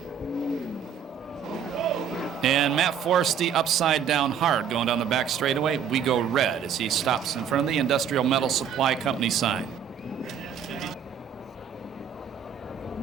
And Matt Forsty upside down hard, going down the back straightaway. We go red as he stops in front of the Industrial Metal Supply Company sign.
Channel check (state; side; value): quieter; left; 7.9 dB